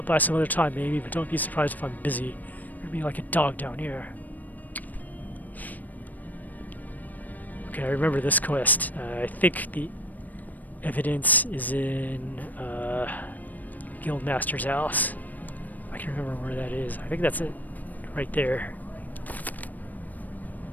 by some other time maybe, but don't be surprised if I'm busy. You're gonna be like a dog down here. Okay, I remember this quest. I think the evidence is in Guildmaster's house. I can remember where that is. I think that's it. Right there.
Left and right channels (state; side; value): late; right; 0.082 ms